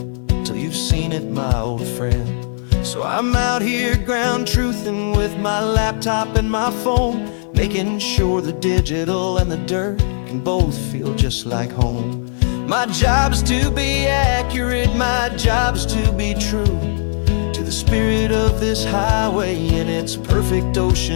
till you've seen it, my old friend. So I'm out here ground truthing with my laptop and my phone, making sure the digital and the dirt can both feel just like home. My job is to be accurate, my job is to be true to the spirit of this highway in its perfect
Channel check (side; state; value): right; silent; digital silence